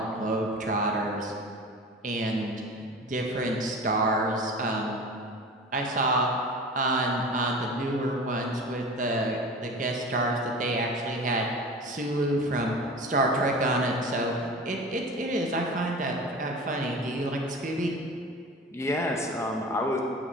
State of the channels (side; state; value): both; normal; correlation 0.35